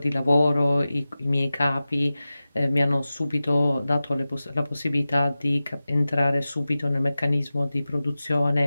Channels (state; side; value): inverted; both; correlation -0.95